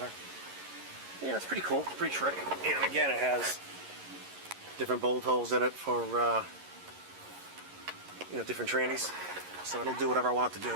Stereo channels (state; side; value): late; left; 11 ms